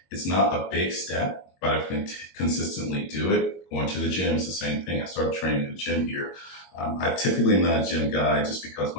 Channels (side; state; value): right; late; 22 ms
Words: it's not a big step, but I can consistently do it. Going to the gym is the same thing. I started training in the gym here. I typically am not a gym guy just because